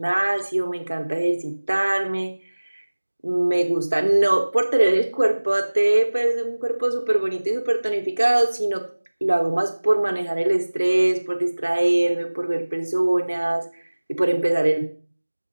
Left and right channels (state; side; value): inverted; both; correlation -1.00